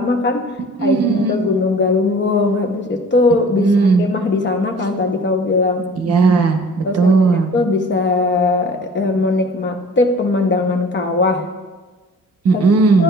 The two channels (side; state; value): both; normal; correlation 0.47